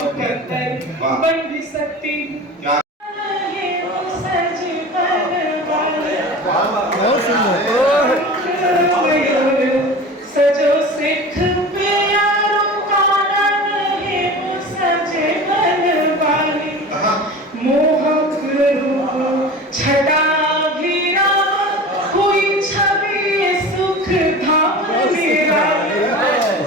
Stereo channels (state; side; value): normal; both; correlation 0.35